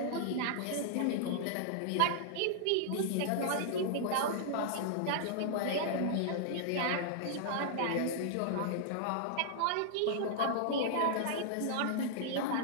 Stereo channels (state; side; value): different; both; correlation -0.01